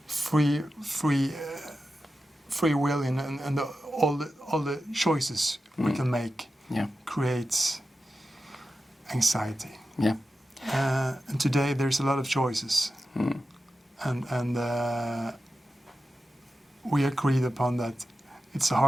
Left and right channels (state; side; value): normal; both; correlation 0.92